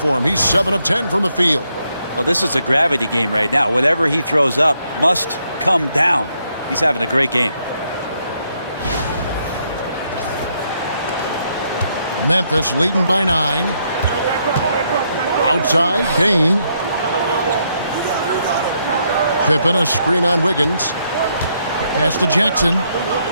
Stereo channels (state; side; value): inverted; both; correlation -0.75